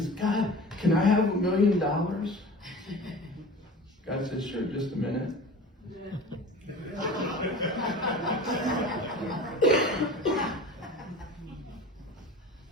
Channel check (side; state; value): both; normal; correlation 0.38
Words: "God, can I have $1 million?" God says, "Sure, just a minute."